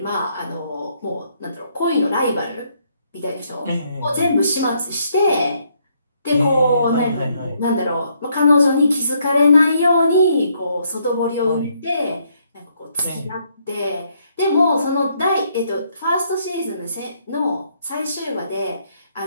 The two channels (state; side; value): inverted; both; correlation -0.72